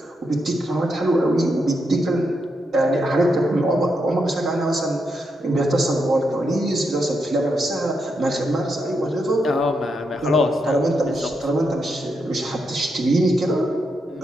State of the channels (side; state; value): both; normal; correlation 0.82